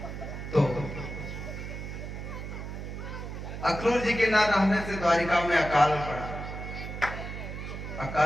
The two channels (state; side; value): noise; right; hum, 8 dB below the sound